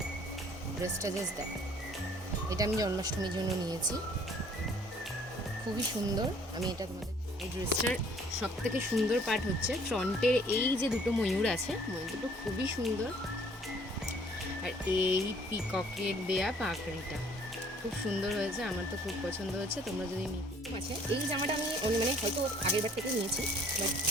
ড্রেসটা, জাস্ট দেখো, এটা আমি জন্মাষ্টমীর জন্য নিয়েছি, খুবই সুন্দর। আমি এটা তোমাদের, এই ড্রেসটার সব থেকে সুন্দর পার্ট হচ্ছে ফ্রন্টের এই যে দুটো ময়ূর আছে, ময়ূর দুটো খুবই সুন্দর। আর এই পিককের দেয়া পাকড়িটা খুব সুন্দর হয়েছে, আমার তো খুব পছন্দ হচ্ছে। তোমরা যদি আছে, এই জামাটা আমি মানে হয়তো আগের বার থেকে নিয়েছি, বাট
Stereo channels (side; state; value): both; normal; correlation 0.57